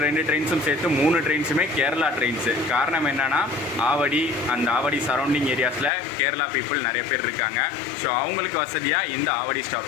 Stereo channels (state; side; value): drops out; right; at 5.9 s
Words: 2 ட்ரெயின்ஸும் சேர்த்து 3 ட்ரெயின்ஸுமே கேரளா ட்ரெயின்ஸு. காரணம் என்னென்னா ஆவடி, அந்த ஆவடி சரௌண்டிங் ஏரியாஸில் கேரளா பீப்புள் நிறைய பேர் இருக்காங்க. ஸோ அவங்களுக்கு வசதியாக இந்த ஆவடி